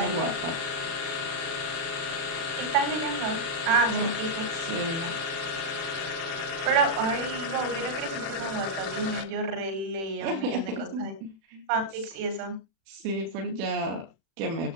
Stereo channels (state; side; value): late; left; 36 ms